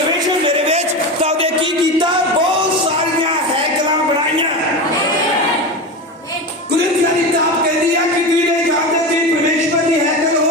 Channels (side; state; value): both; normal; correlation 0.23